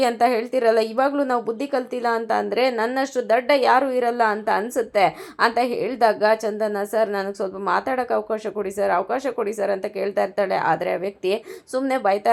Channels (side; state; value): both; identical; correlation 1.00